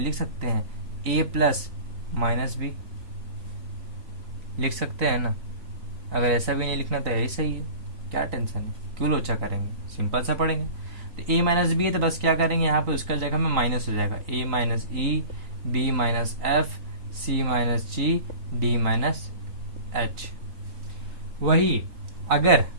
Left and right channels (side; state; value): left; late; 3.9 ms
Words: लिख सकते हैं ए प्लस माइनस बी, लिख सकते हैं ना। अगर ऐसा भी नहीं लिखना तो यही सही है, क्या टेंशन है, क्यों लोचा करेंगे, सिंपल सा पढ़ेंगे। तो ए माइनस बी है तो बस क्या करेंगे, यहाँ पे उसका जगह में माइनस हो जाएगा, ए माइनस ई, बी माइनस एफ, सी माइनस जी, डी माइनस एच। वही अगर